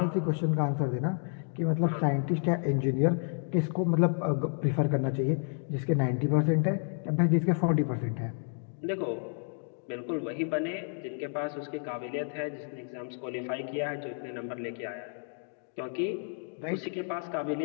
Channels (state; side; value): silent; right; 57 dB below the other